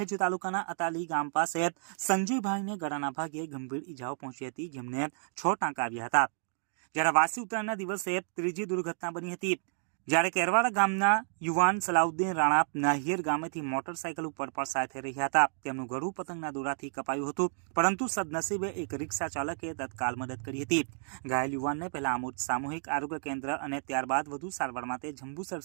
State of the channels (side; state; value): left; silent; digital silence